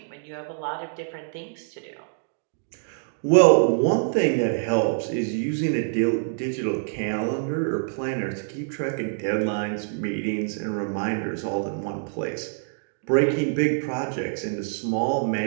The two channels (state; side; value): silent; left; digital silence